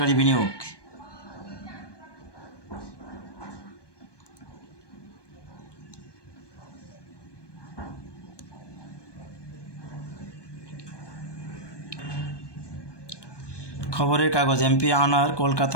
বিনিয়োগ। খবরের কাগজ, এমপি আনার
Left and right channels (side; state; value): right; late; 1.2 ms